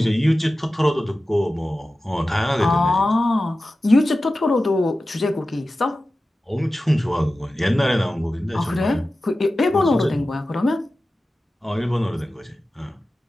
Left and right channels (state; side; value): normal; both; correlation 0.94